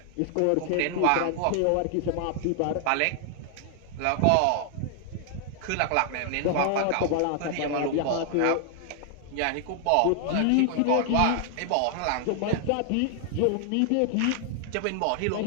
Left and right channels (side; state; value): both; different; correlation 0.00